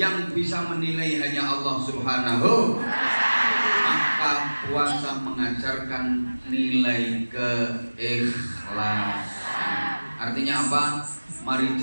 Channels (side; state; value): both; inverted; correlation -1.00